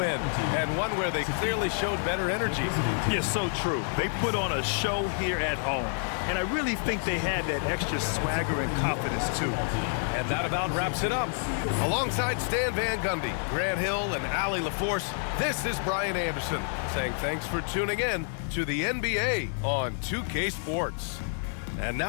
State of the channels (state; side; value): silent; right; 59 dB below the other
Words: and one where they clearly showed better energy. Yes, so true. They put on a show here at home, and I really think they had that extra swagger and confidence, too. And that about wraps it up. Alongside Stan Van Gundy, Grant Hill, and Allie LaForce, this is Brian Anderson saying thanks for tuning in to the NBA on 2K Sports. And